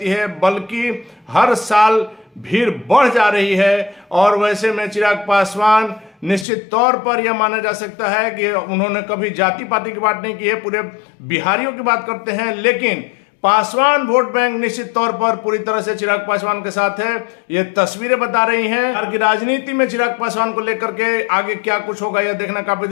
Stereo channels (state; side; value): drops out; right; at 6.5 s